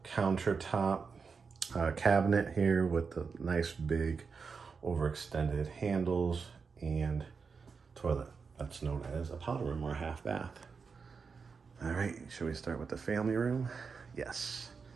countertop cabinet here with the nice big overextended handles and toilet. That's known as a powder room or a half bath. All right, should we start with the family room? Yes.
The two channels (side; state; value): left; quieter; 5.3 dB